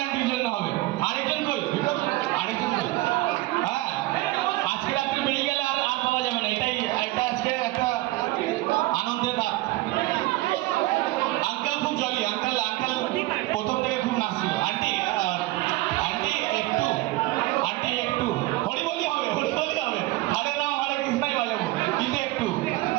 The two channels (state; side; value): quieter; left; 18.8 dB